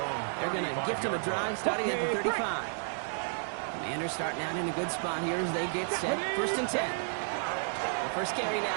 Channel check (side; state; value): left; silent; 57 dB below the other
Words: they're going to gift him a drive starting at the 35. Commanders starting out in a good spot here as they get set. First and 10. The first carry now